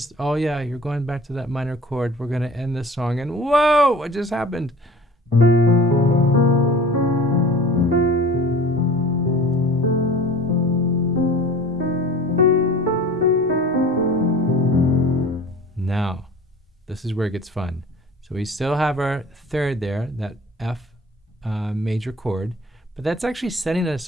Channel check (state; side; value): normal; both; correlation 0.42